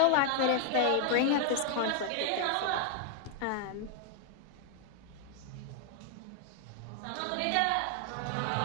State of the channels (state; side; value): different; both; correlation 0.00